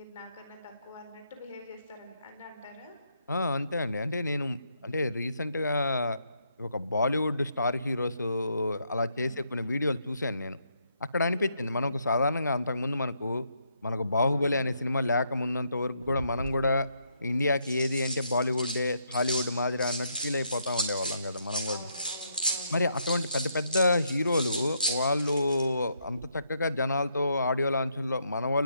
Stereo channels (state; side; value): inverted; both; correlation -0.76